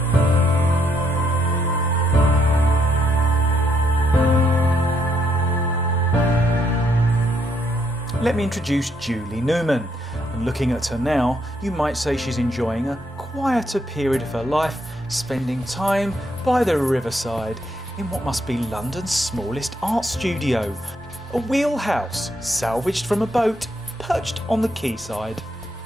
Let me introduce Julie Newman. And looking at her now, you might say she's enjoying a quieter period of her life, spending time by the riverside in what must be London's smallest art studio. A wheelhouse salvaged from a boat perched on the quayside.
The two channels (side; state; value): both; normal; correlation 0.74